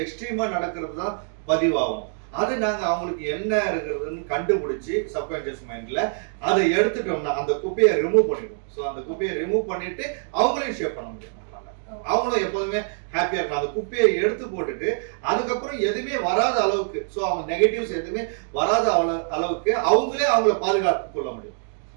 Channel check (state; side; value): silent; left; 62 dB below the other